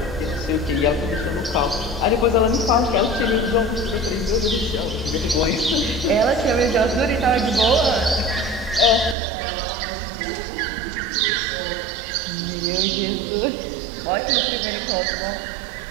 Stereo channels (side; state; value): left; drops out; at 9.2 s